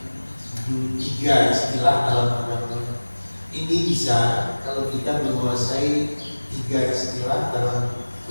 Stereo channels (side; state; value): both; inverted; correlation -1.00